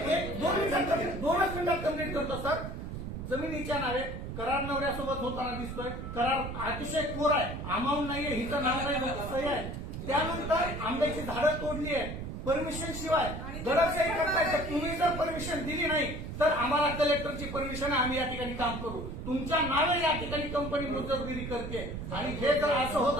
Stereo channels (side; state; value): right; noise; rumble, 7 dB below the sound